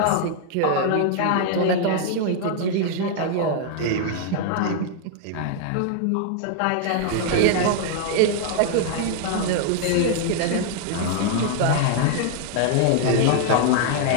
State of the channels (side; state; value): both; different; correlation 0.00